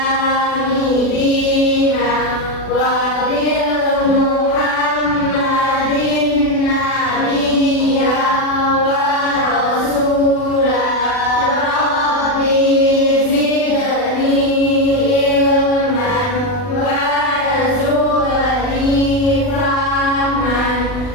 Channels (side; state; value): right; late; 40 ms